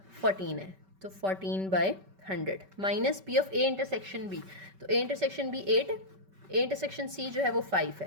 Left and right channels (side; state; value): left; late; 5.2 ms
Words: 14 है, तो 14/100 minus P of A intersection B, तो A intersection B 8, A intersection C जो है वो 5